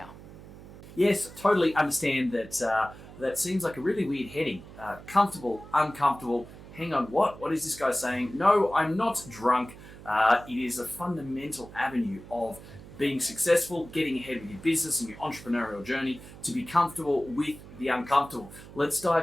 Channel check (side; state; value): right; noise; hum, 17 dB below the sound